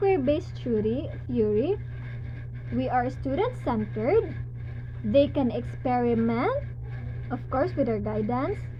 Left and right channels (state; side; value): identical; both; correlation 1.00